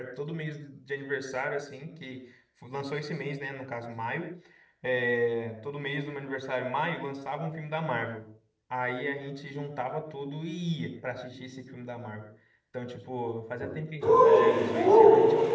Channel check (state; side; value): identical; both; correlation 1.00